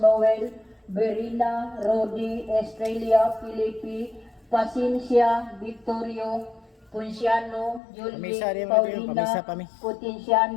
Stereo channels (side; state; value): right; drops out; at 7.8 s